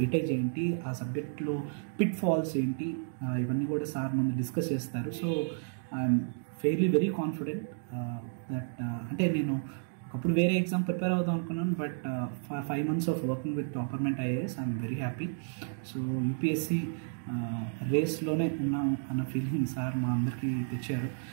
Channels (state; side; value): silent; left; digital silence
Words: ఏంటి, ఆ సబ్జెక్ట్లో పిట్ ఫాల్స్ ఏంటి, ఇవన్నీ కూడా సార్ ముందు డిస్కస్ చేస్తారు. So I'm fairly very confident that అంటే నేను ఒకప్పుడు వేరే ఎగ్జామ్ ప్రిపేర్ అవుదాం అనుకున్నాను, but 5 months of working with Topperment IAS I'm very happy. So UPSC రేస్లోనే ఉన్నాము అన్న ఫీలింగ్ సార్ మా అందరికీ తెచ్చారు.